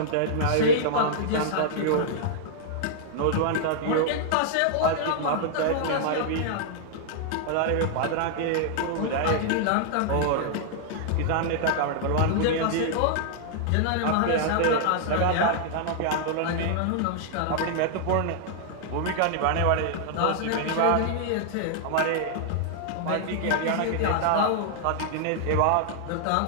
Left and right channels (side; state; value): both; different; correlation -0.01